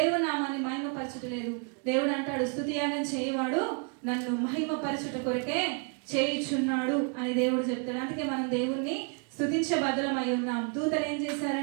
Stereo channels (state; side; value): quieter; left; 38.0 dB